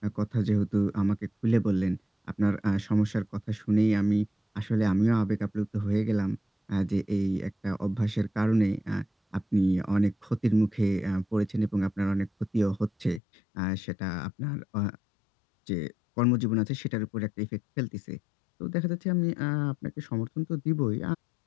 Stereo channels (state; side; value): drops out; right; at 13.2 s